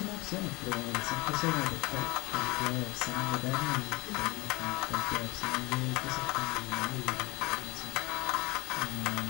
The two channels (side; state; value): right; quieter; 23.8 dB